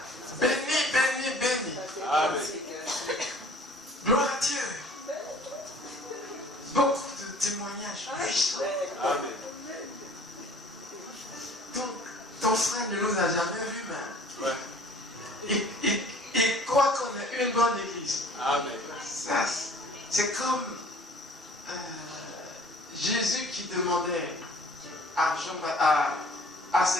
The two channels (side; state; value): both; normal; correlation 0.51